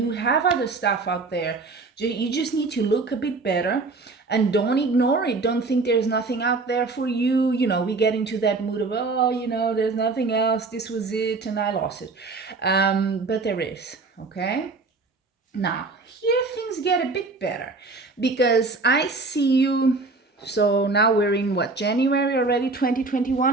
have other stuff out there. You just need to look a bit better, and don't ignore it. Don't think there's nothing out there for you. We get into that mood of, there's nothing else. This was it and I lost it. But there is, okay? Now, here things get a bit better, because I see you. So now we're in January already,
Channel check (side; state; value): left; quieter; 3.8 dB